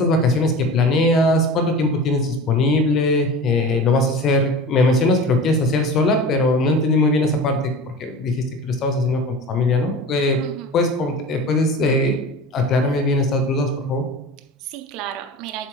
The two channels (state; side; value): normal; both; correlation 0.35